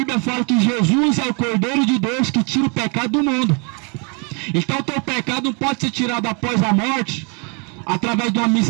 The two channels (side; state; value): left; quieter; 34.2 dB